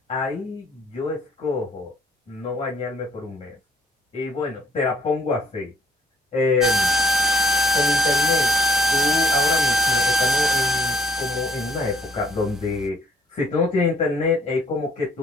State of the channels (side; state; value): both; normal; correlation 0.58